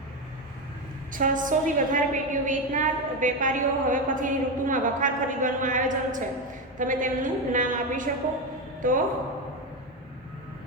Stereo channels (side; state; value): both; normal; correlation 0.13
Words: 600 થી વધારે પેટીઓ વેચનાર વેપારીઓ હવે પછીની ઋતુમાં વખાર ખરીદવાનું આયોજન છે. તમે તેમનું નામ આપી શકો? તો